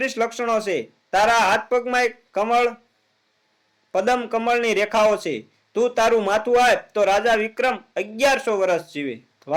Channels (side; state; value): both; identical; correlation 1.00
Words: લક્ષણો છે. તારા હાથ પગમાં એક પદમ કમળની રેખાઓ છે. તું તારું માથું આપ તો રાજા વિક્રમ 1100 વર્ષ જીવે.